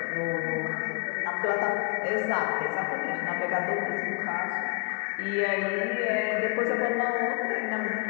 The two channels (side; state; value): right; quieter; 30.6 dB